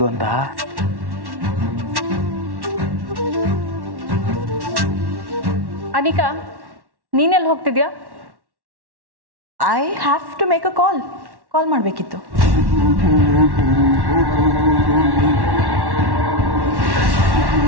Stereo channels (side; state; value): left; late; 1.1 ms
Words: ಅಂತ? ಅನಿಕಾ, ನೀನೆಲ್ಲಿ ಹೋಗ್ತಿದ್ಯಾ? ಐ ಹ್ಯಾವ್ ಟು ಮೇಕ್ ಅ ಕಾಲ್ ಮಾಡಬೇಕಿತ್ತು.